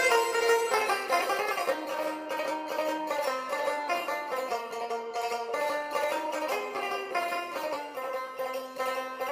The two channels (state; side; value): identical; both; correlation 1.00